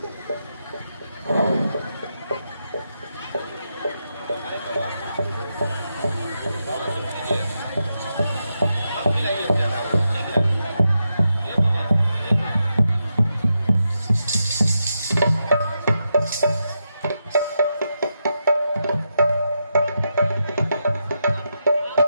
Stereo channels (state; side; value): inverted; both; correlation -0.85